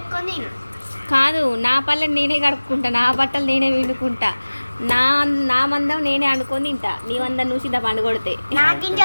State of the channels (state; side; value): inverted; both; correlation -1.00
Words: నేను. కాదు, నా పళ్ళని నేనే కడుక్కుంటా, నా బట్టలు నేనే విండుకుంటా, నా మందం నేనే అనుకొని తింటా. నీ మందం నువ్వు సిద్ధ పండు కొడితే నా